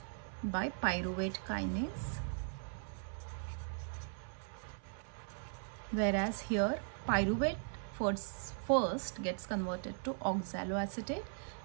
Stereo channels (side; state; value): left; silent; 52 dB below the other